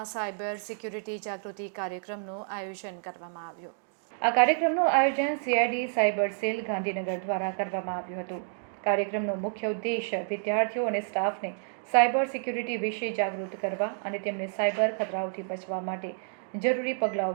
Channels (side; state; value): left; silent; digital silence